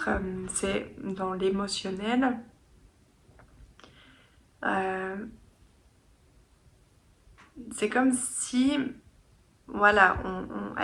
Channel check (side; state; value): both; identical; correlation 1.00